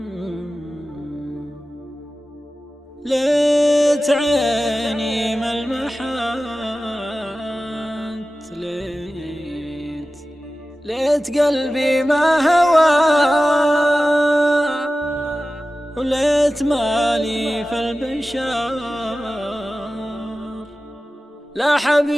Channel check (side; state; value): both; normal; correlation 0.95